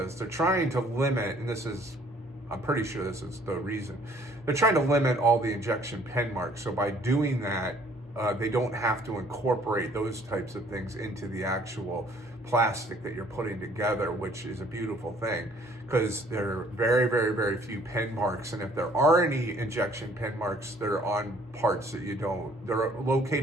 They're trying to limit, and I'm pretty sure this is the reason. They're trying to limit all the injection pen marks. So by doing that, they don't have to incorporate those types of things into the actual plastic that you're putting together, which is a beautiful thing, because there are very, very, very few pen marks. And if there are any injection pen marks, they're on parts that they're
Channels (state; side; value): normal; both; correlation 0.59